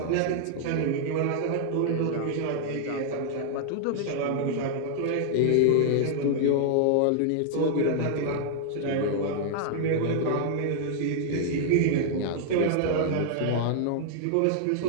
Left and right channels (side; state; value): both; different; correlation -0.01